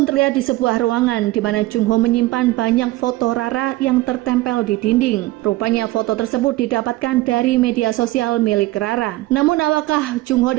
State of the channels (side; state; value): left; quieter; 18.2 dB